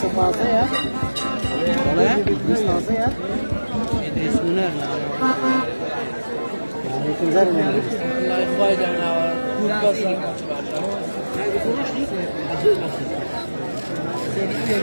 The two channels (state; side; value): inverted; both; correlation -1.00